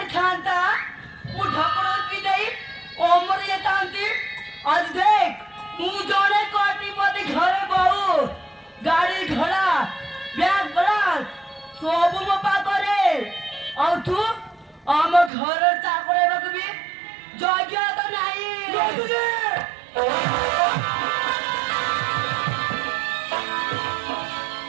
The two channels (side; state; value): left; drops out; at 15.3 s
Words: थांता मुठा पड़ो की नहीं ओमर ये थांती आज देख मु जोने कोटिपति घरे बहु गाड़ी घोड़ा ब्याग बड़ा सब मो पाखरे और तू आम घर चाकरे बकबी जग्य तो नहीं